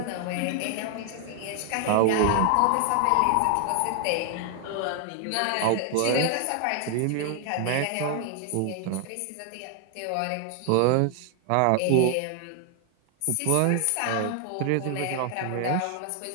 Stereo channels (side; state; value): both; different; correlation 0.00